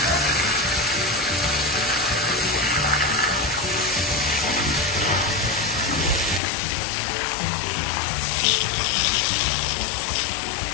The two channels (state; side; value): drops out; right; at 6.4 s